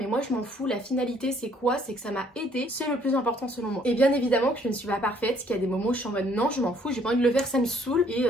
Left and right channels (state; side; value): normal; both; correlation 0.63